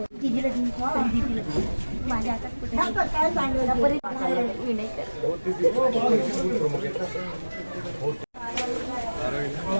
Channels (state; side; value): inverted; both; correlation -1.00